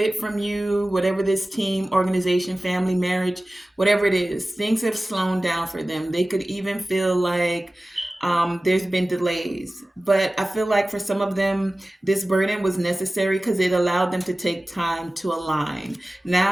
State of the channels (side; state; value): both; normal; correlation 0.97